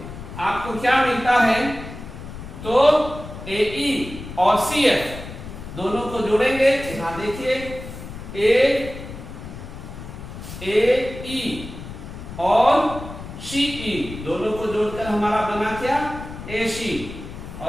आपको क्या मिलता है? तो AE और CF दोनों को जोड़ेंगे, यहां देखिए AE और CE दोनों को जोड़कर हमारा बना क्या? AC,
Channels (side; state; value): left; noise; rumble, 11 dB below the sound